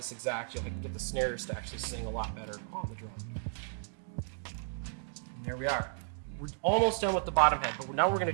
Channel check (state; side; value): silent; left; digital silence